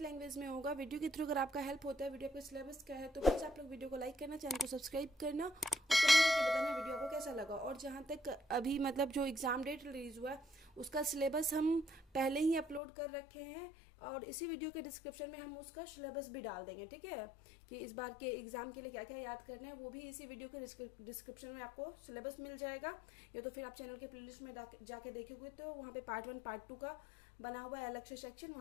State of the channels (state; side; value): drops out; right; at 12.8 s